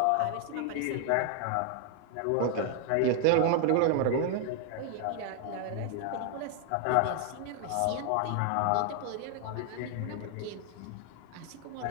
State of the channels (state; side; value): different; both; correlation 0.00